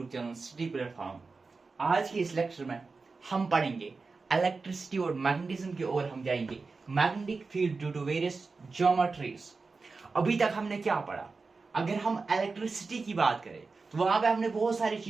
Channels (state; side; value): quieter; left; 4.2 dB